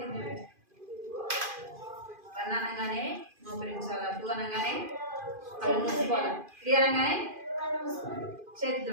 1 అనగానే మోకరించాలా. 2 అనగానే కళ్ళు మూసుకోవాలా. 3 అనగానే చేతి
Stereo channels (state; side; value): late; left; 2.5 ms